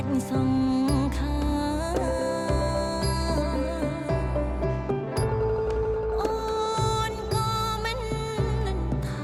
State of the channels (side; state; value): both; identical; correlation 1.00